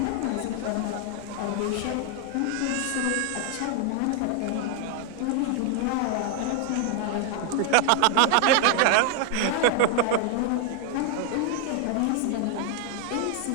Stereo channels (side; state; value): both; different; correlation 0.00